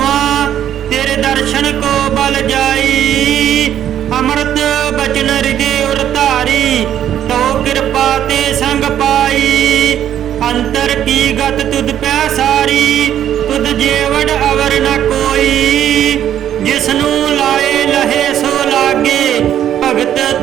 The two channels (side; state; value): left; quieter; 10.6 dB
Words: ਤੇਰੇ ਦਰਸ਼ਨ ਕੋ ਬਲ ਜਾਈ। ਅੰਮ੍ਰਿਤ ਬਚਨ ਹਿਰਦੇ ਉਰ ਧਾਰੀ, ਤੋ ਕਿਰਪਾ ਤੇ ਸੰਗ ਪਾਈ। ਅੰਤਰ ਕੀ ਗਤ ਤੁਧ ਪੈ ਸਾਰੀ, ਤੁਧ ਜੇਵੜ ਅਵਰ ਨ ਕੋਈ। ਜਿਸਨੂੰ ਲਾਏ ਲਹੇ ਸੋ ਲਾਗੇ, ਭਗਤ